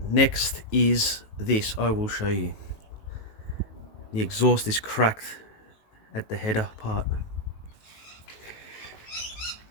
Next is this. I will show you. The exhaust is cracked at the header part.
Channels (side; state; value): right; late; 19 ms